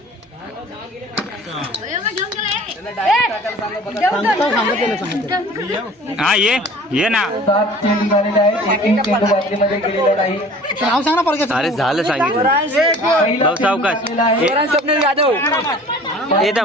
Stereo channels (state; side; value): normal; both; correlation 0.46